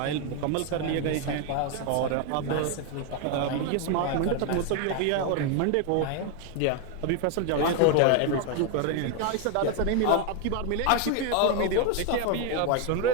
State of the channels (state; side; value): different; both; correlation 0.01